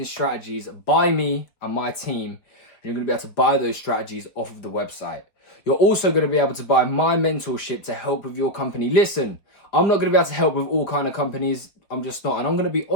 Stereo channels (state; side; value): late; right; 4.7 ms